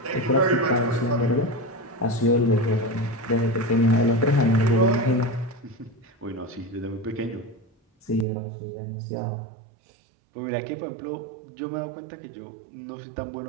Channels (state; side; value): drops out; left; at 8.2 s